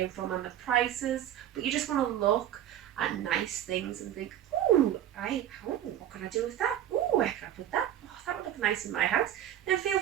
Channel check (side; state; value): left; quieter; 11.4 dB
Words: from and the prices, but you just want to look at nice things and think, ooh, what can I do with that? Ooh, where can I put that? Oh, that would look nice in my house. Then feel